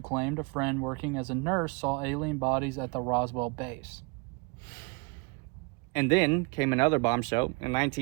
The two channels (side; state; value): left; quieter; 30.1 dB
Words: claimed a friend working as a nurse saw alien bodies at the Roswell base. And then came another bombshell. In